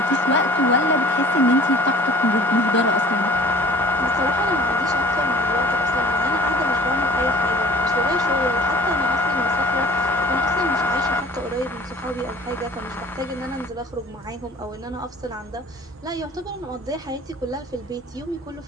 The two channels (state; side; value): normal; both; correlation 0.49